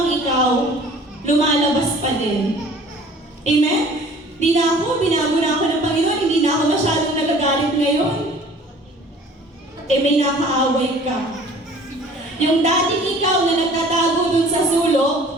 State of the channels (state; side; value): normal; both; correlation 0.49